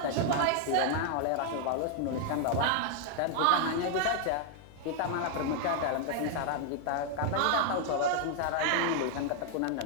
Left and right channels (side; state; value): both; different; correlation 0.00